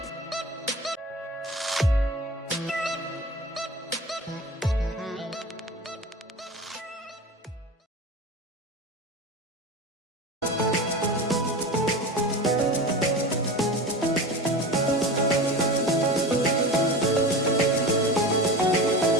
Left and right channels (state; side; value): normal; both; correlation 0.30